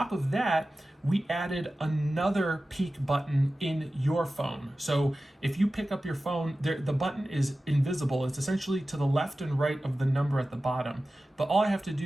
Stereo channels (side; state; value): both; normal; correlation 0.95